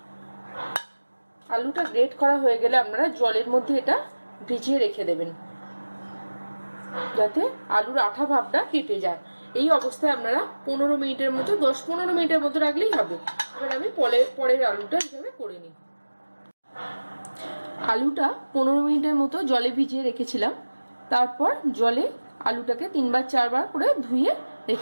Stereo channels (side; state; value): both; inverted; correlation -1.00